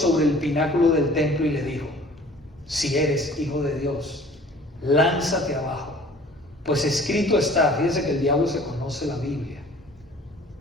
el pináculo del templo y le dijo, si eres hijo de Dios, lánzate abajo, pues escrito está. Fíjense que el diablo se conoce la Biblia.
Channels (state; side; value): normal; both; correlation 0.49